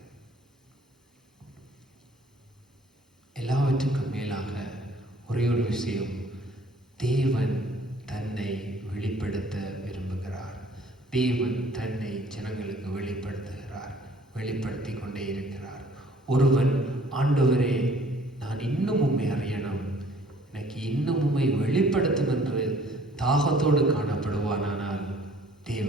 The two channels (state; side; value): normal; both; correlation 0.56